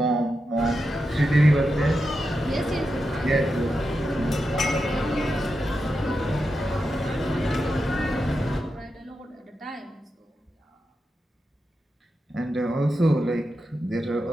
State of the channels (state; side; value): normal; both; correlation 0.88